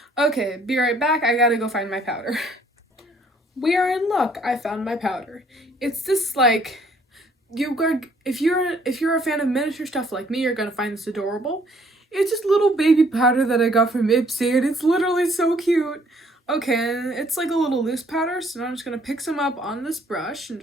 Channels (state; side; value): normal; both; correlation 0.62